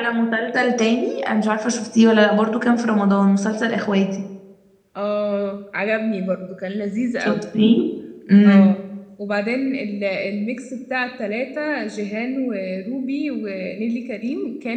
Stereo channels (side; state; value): both; identical; correlation 1.00